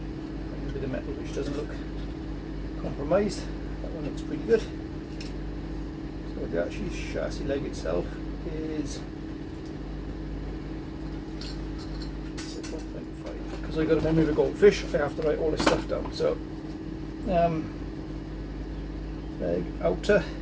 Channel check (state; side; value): identical; both; correlation 1.00